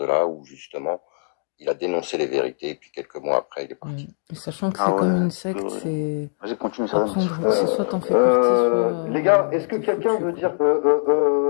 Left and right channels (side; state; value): right; silent; digital silence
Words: là où, justement, il a dénoncé les vérités, et puis quelques mois après, il est parti. Et sachant que c'est comme une secte, c'est... Vas-y, continue, Apprendre que c'est soit t'en fais partie, soit... Les gars, est-ce que quelqu'un veut dire...